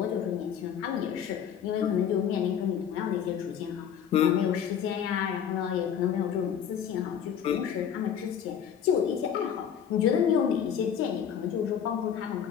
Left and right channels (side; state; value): right; quieter; 8.4 dB